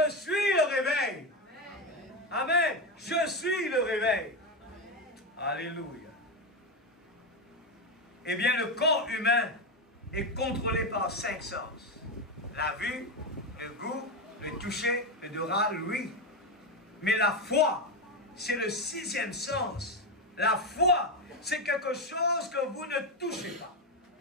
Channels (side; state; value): both; normal; correlation 0.12